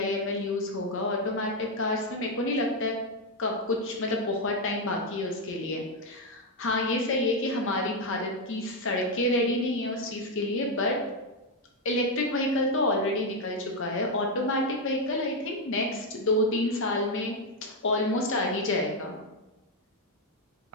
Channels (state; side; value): normal; both; correlation 0.03